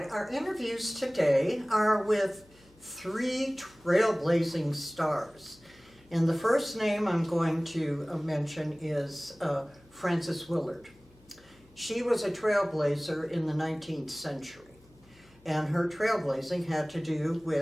our interviews today are with three trailblazing stars. And the first name I'm going to mention is Frances Willard. She was a trailblazer in the 19th century. And her trailblazing had to do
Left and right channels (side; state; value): left; noise; hum, 28 dB below the sound